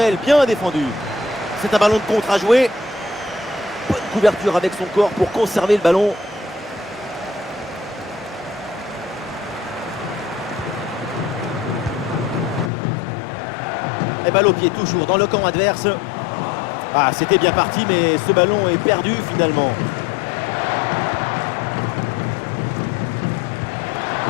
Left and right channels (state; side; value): drops out; right; at 12.7 s